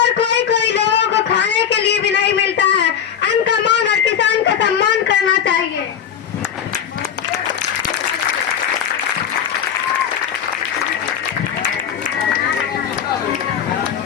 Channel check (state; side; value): quieter; right; 8.5 dB